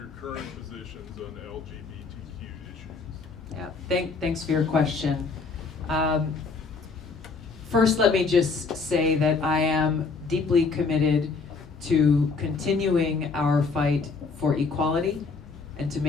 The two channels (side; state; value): right; quieter; 4.4 dB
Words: current positions on LGBTQ issues? Yeah, thanks for your question. First, let me just say that I am deeply committed to continuing our fight for equality and to